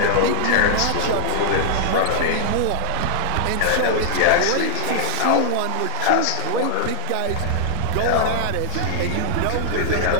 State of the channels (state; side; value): different; both; correlation 0.00